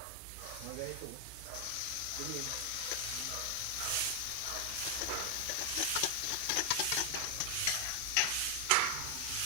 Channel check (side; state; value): both; different; correlation 0.00